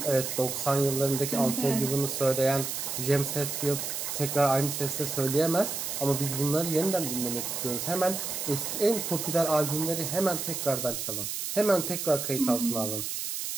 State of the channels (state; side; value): noise; right; hiss, 4 dB below the sound